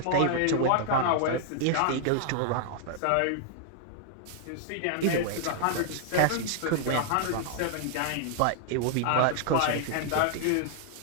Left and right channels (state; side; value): different; both; correlation -0.01